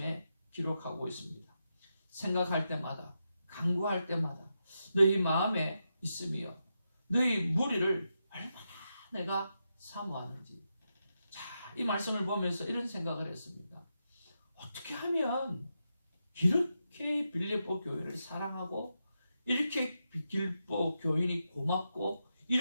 기록하고 있습니다. 생각할 때마다 간구할 때마다 너희 마음에 있으며 너희 무리를 얼마나 내가 사모하는지. 자, 이 말씀을 보면서 이런 생각을 했습니다. 어떻게 하면 이렇게 빌립보 교회를 사랑하고 이렇게 빌립보 교인이 고맙고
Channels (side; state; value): both; inverted; correlation -0.86